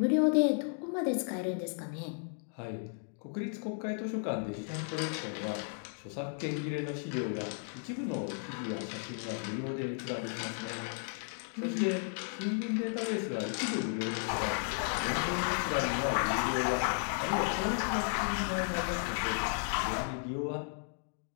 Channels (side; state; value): right; silent; 55 dB below the other